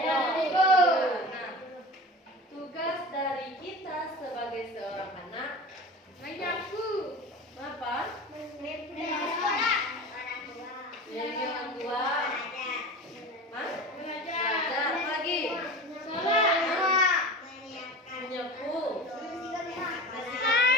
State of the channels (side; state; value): both; normal; correlation 0.33